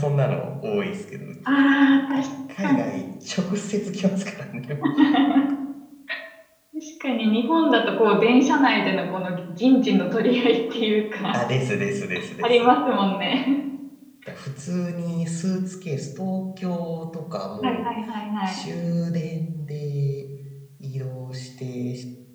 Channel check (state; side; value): identical; both; correlation 1.00